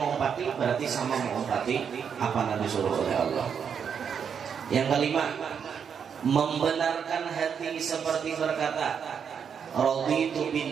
berarti sama mengumpati apa yang disuruh oleh Allah. Yang kelima, membenarkan hati seperti berkata, raditu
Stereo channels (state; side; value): quieter; left; 7.2 dB